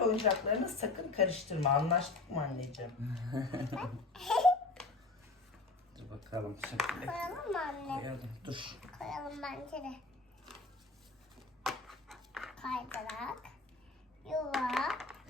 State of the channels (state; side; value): quieter; right; 3.5 dB